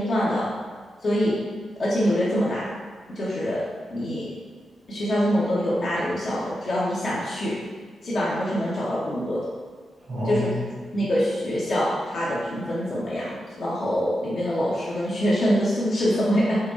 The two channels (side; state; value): both; normal; correlation 0.88